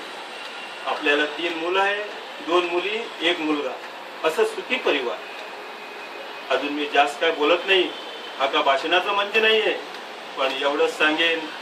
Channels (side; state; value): both; identical; correlation 1.00